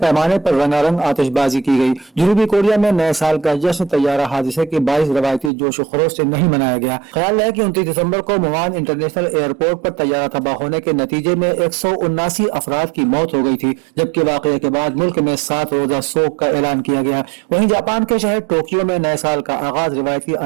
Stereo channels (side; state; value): left; drops out; at 5.5 s